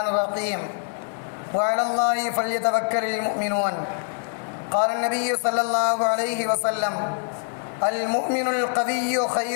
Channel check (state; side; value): silent; right; 58 dB below the other